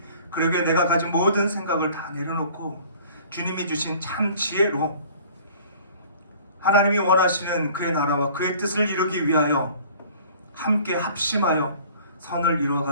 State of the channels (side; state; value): both; inverted; correlation -0.49